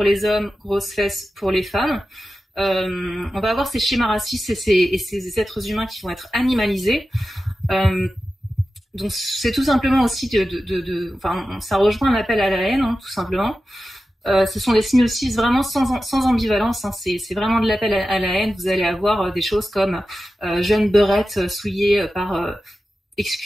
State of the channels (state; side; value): normal; both; correlation 0.93